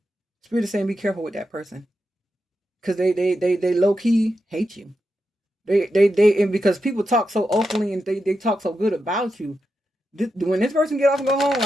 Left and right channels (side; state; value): both; normal; correlation 0.87